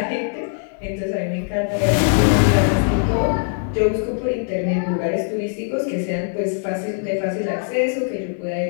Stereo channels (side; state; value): right; silent; 59 dB below the other